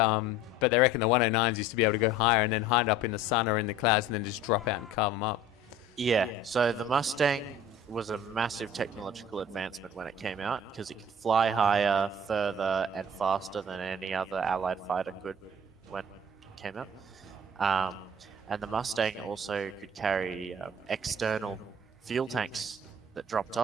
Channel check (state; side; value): normal; both; correlation 0.46